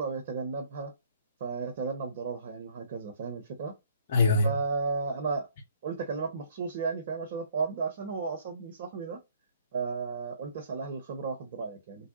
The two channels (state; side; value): inverted; both; correlation -0.61